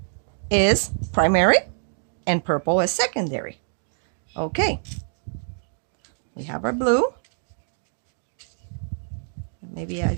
is primary and purple is secondary. Okay. We have our blue. Maybe I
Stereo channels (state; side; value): silent; left; 62 dB below the other